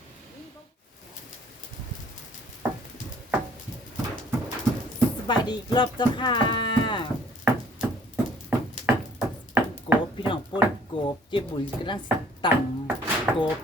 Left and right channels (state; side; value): normal; both; correlation 0.57